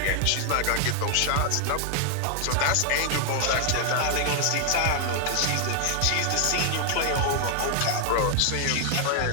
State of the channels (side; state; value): both; different; correlation 0.00